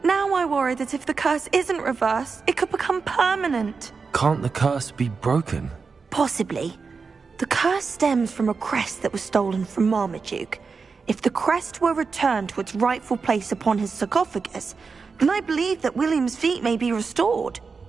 Now I worry that if the curse isn't reversed, it could become permanent. Can't the curse be broken? Possibly. The curse stems from a crest that was stolen from Marmaduke. If the crest were returned to its rightful place upon his sarcophagus, then I believe that William's feet may be restored.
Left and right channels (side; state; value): left; quieter; 4.9 dB